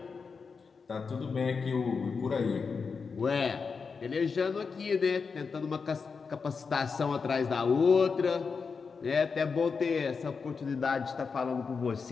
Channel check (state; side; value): quieter; right; 5.2 dB